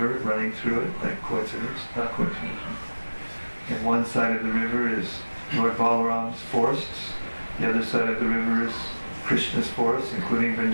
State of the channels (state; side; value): inverted; both; correlation -1.00